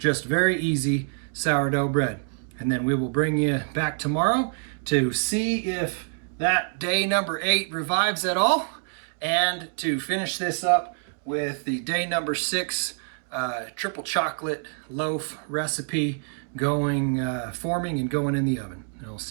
very easy sourdough bread. And then we will bring you back tomorrow to see if that day number 8 revives at all, and to finish this up with the day number 6 triple chocolate loaf recipe going, forming and going in the oven. And I'll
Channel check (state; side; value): silent; left; 55 dB below the other